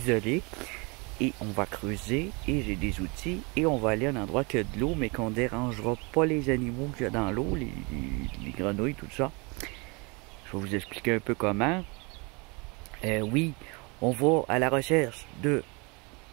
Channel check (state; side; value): quieter; left; 29.3 dB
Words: Et on va creuser, et j'ai des outils, et on va aller à un endroit qui a de l'eau, mais qu'on ne dérangera pas les animaux qu'il y a dans l'eau, les grenouilles, tout ça. Je vais vous expliquer un peu comment. Oui, on va à la recherche de